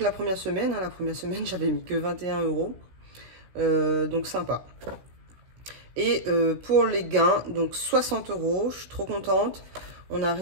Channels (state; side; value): late; left; 16 ms